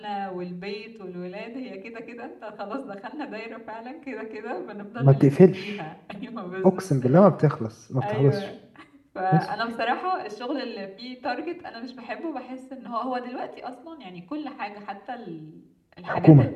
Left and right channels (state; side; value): identical; both; correlation 1.00